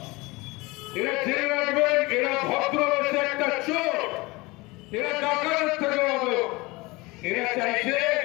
এরা জেনে রাখবেন এরা ভদ্র হচ্ছে একটা চোর এরা ডাকাতের থেকে হবে এরা চাইছে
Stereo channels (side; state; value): right; quieter; 23.2 dB